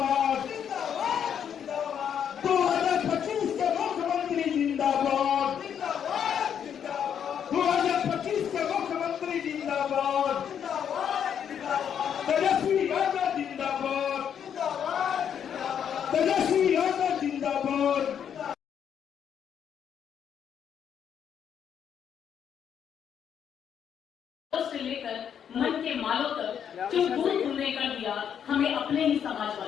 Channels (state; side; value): quieter; right; 8.5 dB